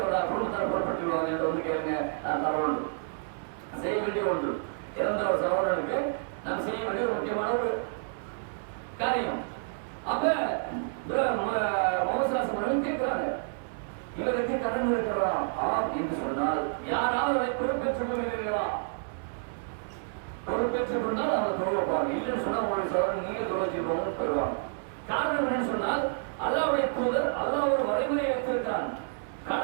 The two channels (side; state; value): left; silent; 58 dB below the other